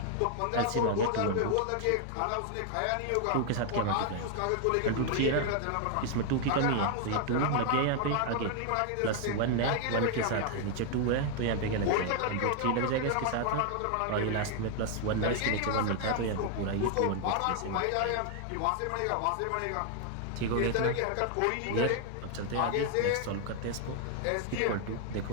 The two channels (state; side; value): different; both; correlation 0.00